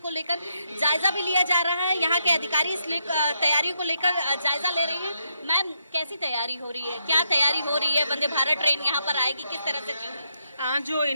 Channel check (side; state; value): both; inverted; correlation -0.78